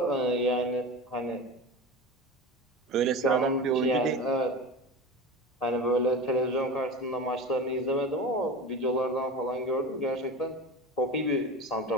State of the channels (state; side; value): normal; both; correlation 0.29